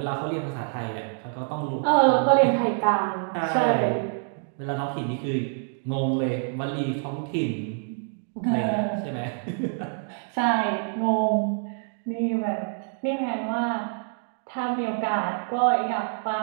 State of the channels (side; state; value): left; silent; 55 dB below the other